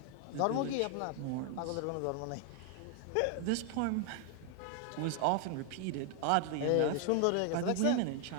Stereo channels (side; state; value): both; different; correlation 0.00